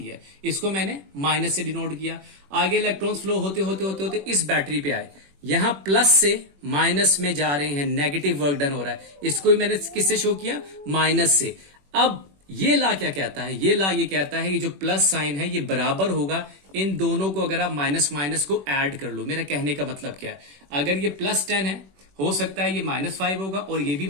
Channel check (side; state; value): left; late; 21 ms